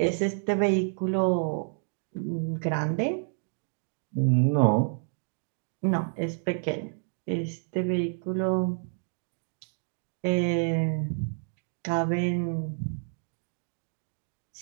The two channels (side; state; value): left; silent; digital silence